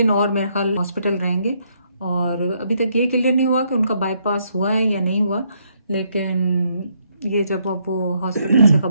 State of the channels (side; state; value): both; inverted; correlation -0.73